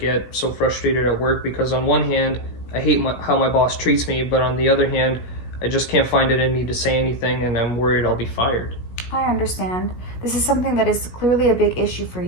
so frustrated at work because, on one hand, I hate how my boss treats me, but on the other hand, I just can't find it in me to say anything, and I'm worried I'll be fired. I understand. This is something that is clearly a big issue for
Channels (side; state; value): right; late; 17 ms